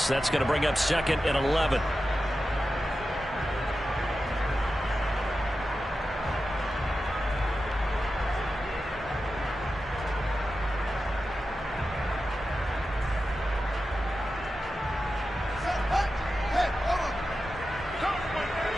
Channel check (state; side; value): normal; both; correlation 0.92